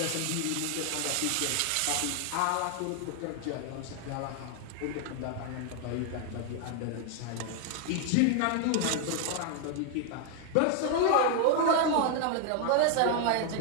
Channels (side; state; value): both; different; correlation 0.00